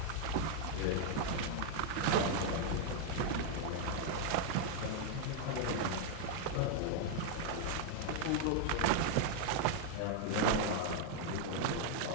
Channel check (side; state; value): both; different; correlation 0.00